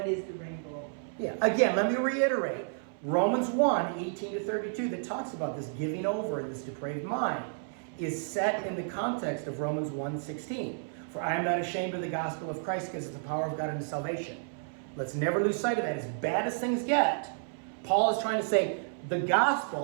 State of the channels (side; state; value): left; silent; 57 dB below the other